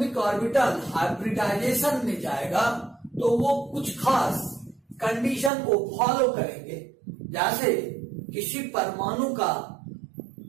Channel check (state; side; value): drops out; left; at 5.5 s